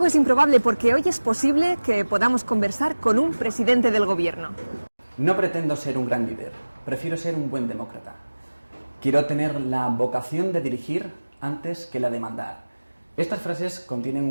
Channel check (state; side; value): inverted; both; correlation -1.00